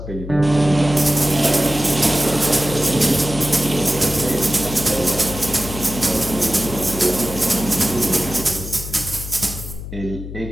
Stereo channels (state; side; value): noise; left; hum, 10 dB below the sound